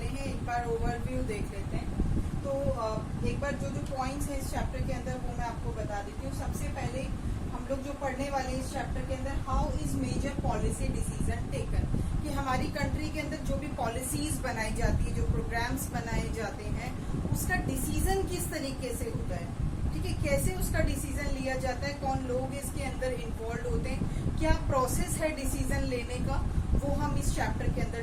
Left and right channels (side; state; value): both; identical; correlation 1.00